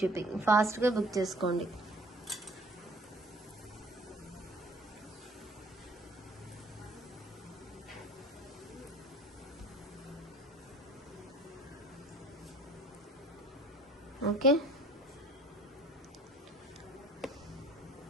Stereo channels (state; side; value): normal; both; correlation 0.51